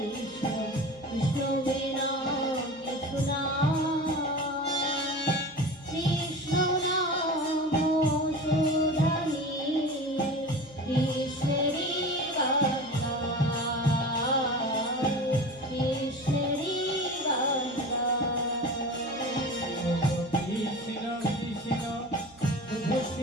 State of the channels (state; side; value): noise; right; hum, 27 dB below the sound